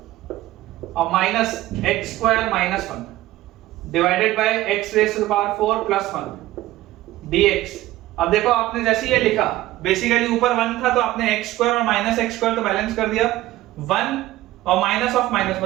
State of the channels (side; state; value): left; quieter; 16.2 dB